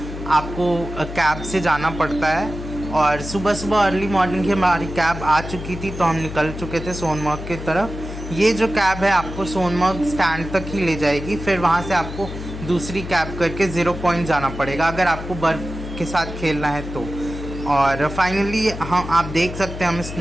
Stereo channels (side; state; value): left; noise; hum, 9 dB below the sound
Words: आपको कैब से जाना पड़ता है। और सुबह सुबह अर्ली मॉर्निंग ही हमारी कैब आ चुकी थी, तो हम निकल चुके थे सोनमर्ग की तरफ। ये जो कैब है आपको सोनमर्ग स्टैंड तक ही ले जाएगी, फिर वहाँ से आपको दूसरी कैब करके ज़ीरो पॉइंट जाना पड़ेगा अगर आपको बर्फ़ के साथ खेलना है तो। और फाइनली हम आप देख सकते हैं, हमें